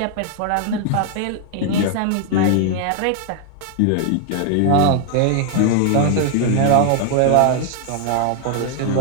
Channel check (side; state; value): both; different; correlation 0.00